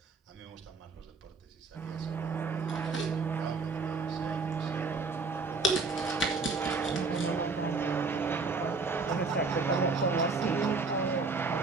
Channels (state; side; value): quieter; left; 4.1 dB